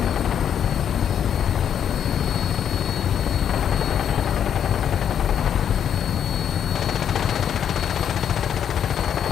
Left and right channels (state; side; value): quieter; right; 8.8 dB